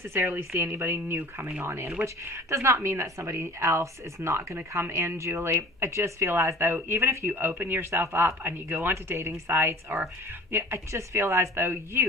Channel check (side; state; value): both; normal; correlation 0.45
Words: see anybody new coming on in, which does not mean that somebody else is not going to come in, Julie. I just feel as though even if you open yourself up and you go onto dating sites, or I just feel as though